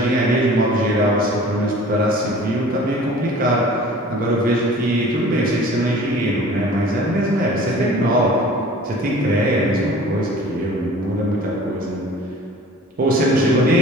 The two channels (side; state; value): both; normal; correlation 0.45